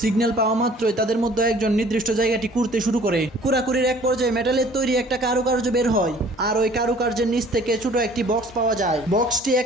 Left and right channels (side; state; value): both; normal; correlation 0.52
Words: সিগন্যাল পাওয়া মাত্রই তাদের মধ্যে একজন নির্দিষ্ট জায়গাটি কুড়তে শুরু করে। কুড়াকুড়ির এক পর্যায়ে মেটালের তৈরি একটা কারুকার্য বের হয়, আর ওই কারুকার্যের নিচ থেকে ছোট একটি বক্স পাওয়া যায়। বক্সটি